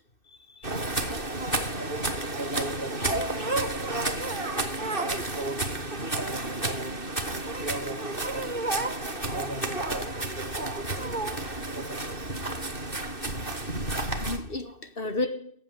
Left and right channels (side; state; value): right; late; 2.6 ms